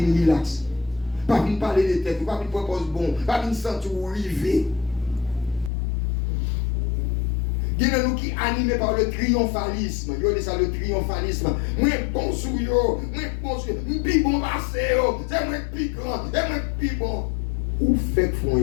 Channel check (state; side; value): drops out; right; at 5.7 s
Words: relax. Pas venir parler de tête. Pas venir proposer bon. Pas venir sentir ou river. Il y a nous qui animés par le triomphalisme. Il y a ça le triomphalisme. Moi bon sou yo, moi bon sou, pi bon passé yo, c'est moi pi grand, c'est moi pi bon. Ou fait font